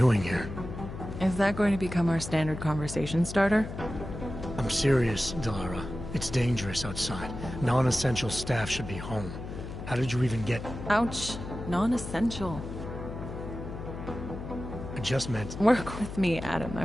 here? Is that going to become our standard conversation starter? I'm serious, Delara. It's dangerous outside. Non-essential staff should be home. How did you even get... Ouch. Non-essential. I just meant... Work with me, Adam. I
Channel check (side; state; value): left; noise; hum, 9 dB below the sound